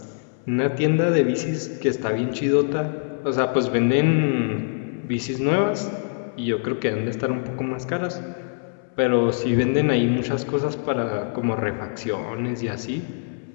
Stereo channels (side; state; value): right; silent; 63 dB below the other